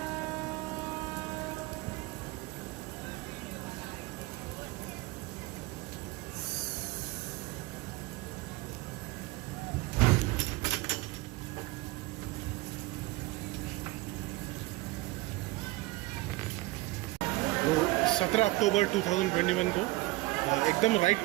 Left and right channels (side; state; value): left; quieter; 20.5 dB